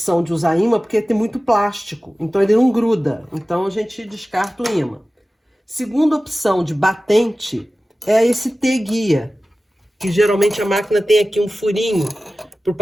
de usar ímã porque tem muito plástico, então ele não gruda, então a gente descarta o ímã. Segunda opção de batente é esse T-guia, que geralmente a máquina tem aqui um furinho para o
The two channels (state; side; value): normal; both; correlation 0.96